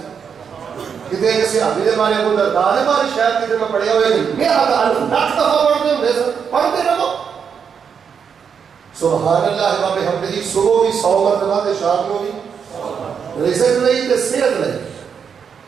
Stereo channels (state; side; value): quieter; left; 6.9 dB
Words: کتنے کسی حافظ دے بارے کو دردار ہے بارے شاید کتنے میں پڑھیا ہوئے نہیں, میں ہزار لاکھ دفعہ پڑھتے ہوں سن, پڑھتے رہو سبحان اللہ و بحمدہ. صبح بھی 100 مرتبہ تے شام کو بھی رزق نہیں تے صحت نہیں